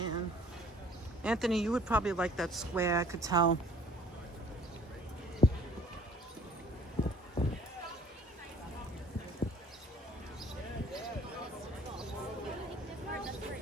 Anthony, you would probably like that square, I could tell.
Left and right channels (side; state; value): both; normal; correlation 0.54